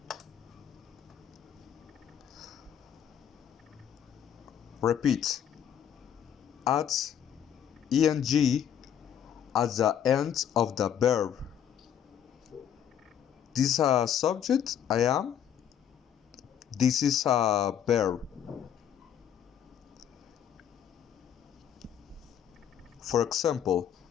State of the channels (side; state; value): right; quieter; 9.3 dB